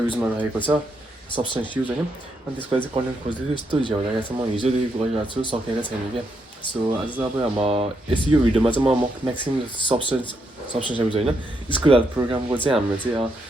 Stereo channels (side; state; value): both; normal; correlation 0.79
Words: रहेको छ सब्सटेन्स युज होइन अनि त्यसको लागि चाहिँ कन्टेन्ट खोज्दैछु यस्तो झ्याउ लागेको छ म हिजोदेखि गरिरहेको छु सकेको छैन क्या सो आज चाहिँ अब यो भिडियोमा चाहिँ म म्याक्सिमम् सब्सटेन्स एब्युज होइन स्कुल हेल्थ प्रोग्रामको चाहिँ हाम्रो चाहिँ